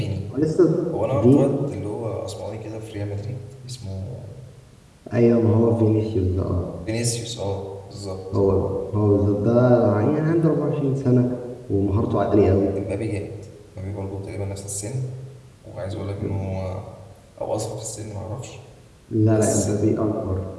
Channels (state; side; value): identical; both; correlation 1.00